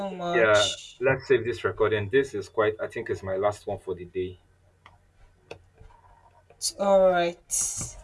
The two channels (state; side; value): identical; both; correlation 1.00